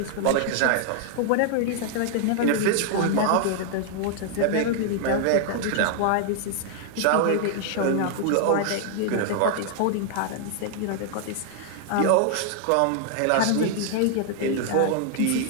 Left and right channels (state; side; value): different; both; correlation 0.00